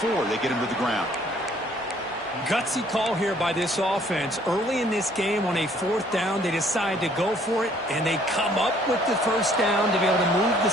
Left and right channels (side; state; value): both; normal; correlation 0.60